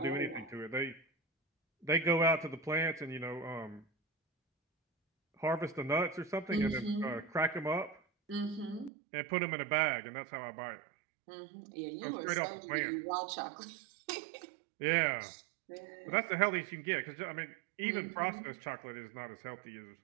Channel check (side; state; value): left; drops out; at 8.9 s